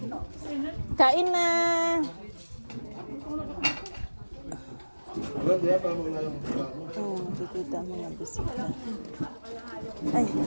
Kain na. Oh, kikita mo na bisita. Ay,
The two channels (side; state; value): both; inverted; correlation -1.00